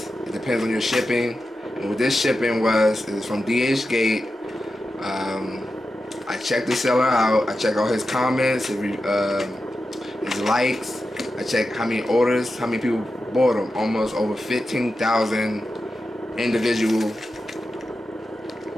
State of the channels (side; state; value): both; normal; correlation 0.91